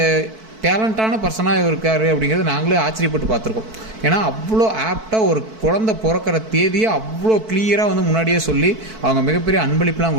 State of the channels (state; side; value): late; left; 4.5 ms